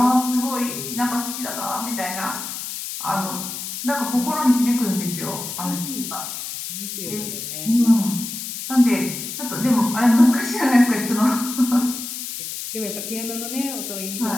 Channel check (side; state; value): left; noise; hiss, 7 dB below the sound